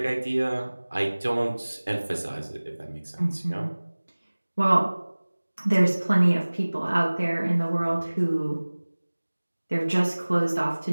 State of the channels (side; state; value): both; inverted; correlation -1.00